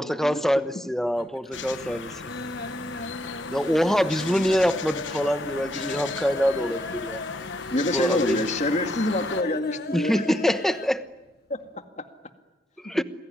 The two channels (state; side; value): normal; both; correlation 0.77